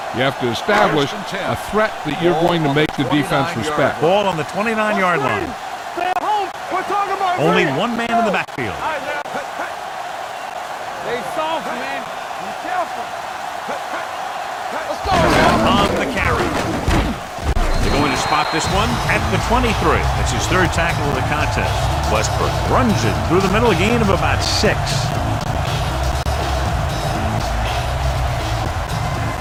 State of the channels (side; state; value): both; identical; correlation 1.00